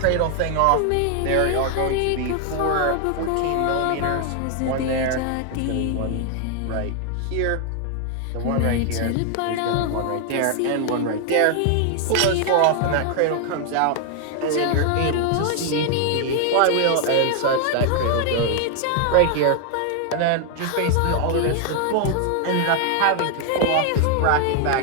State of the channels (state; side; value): different; both; correlation 0.00